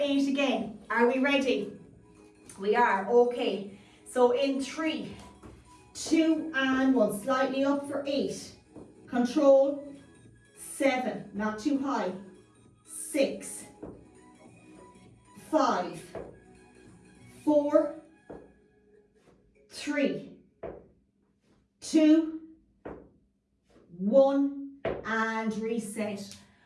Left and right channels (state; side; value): identical; both; correlation 1.00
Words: again. Are we ready? We are. Okay. So in 3, 2, and 1. Slightly up for 8. Control. 7. Not too high. 6, 5, 4, 3, 2, 1, and reset.